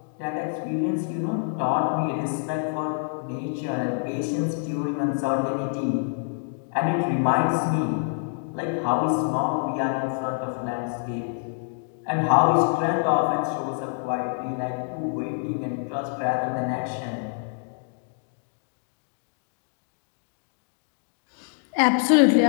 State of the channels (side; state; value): right; silent; digital silence